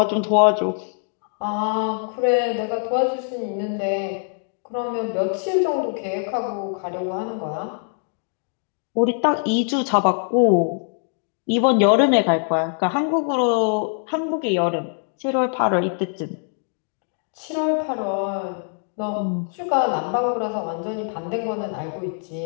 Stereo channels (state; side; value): silent; right; 60 dB below the other